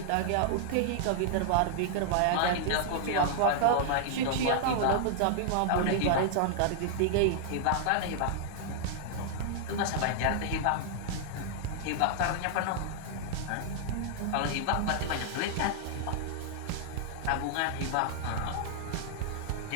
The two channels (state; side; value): different; both; correlation -0.01